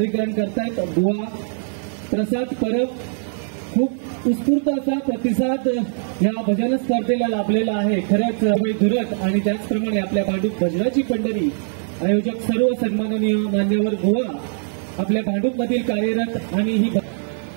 करतायत बुवा प्रसाद परब. खूप उत्स्फूर्त असा प्रतिसाद या भजन स्पर्धेला लाभलेला आहे. खरंच धुरत आणि त्याचप्रमाणे आपल्या भांडूप भजनाची पंढरी आयोजक सर्व सन्माननीय मान्यवर बुवा आपल्या भांडूप मधील कार्यरत आणि ही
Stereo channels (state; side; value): silent; left; digital silence